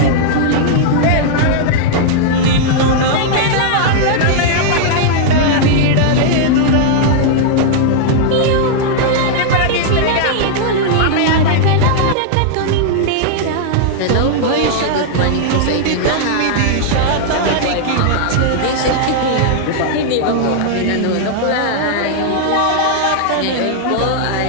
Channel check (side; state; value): both; different; correlation -0.01